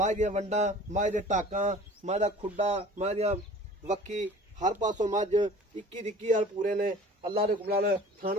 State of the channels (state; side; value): normal; both; correlation 0.45